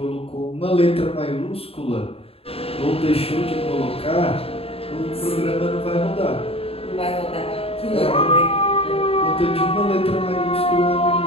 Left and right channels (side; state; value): right; late; 0.28 ms